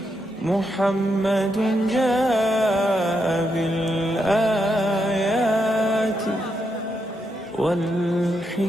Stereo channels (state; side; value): normal; both; correlation 0.82